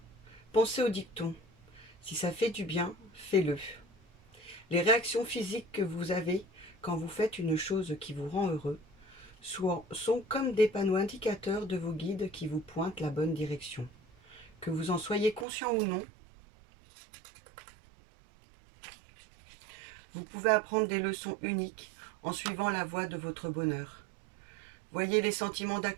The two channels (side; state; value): left; drops out; at 15.5 s